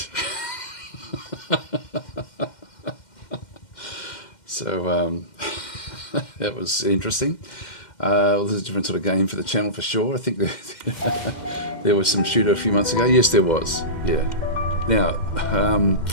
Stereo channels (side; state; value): right; late; 2.1 ms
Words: So, that was interesting. Well, this is a different sort of game for the channel for sure. I think there was some shooter a few months ago. Yes, there was. Yeah. Now,